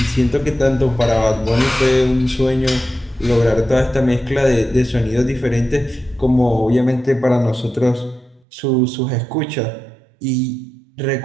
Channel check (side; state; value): left; drops out; at 8.4 s